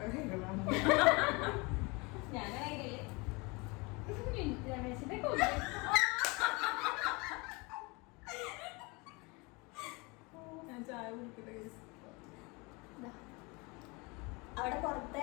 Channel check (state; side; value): quieter; right; 27.2 dB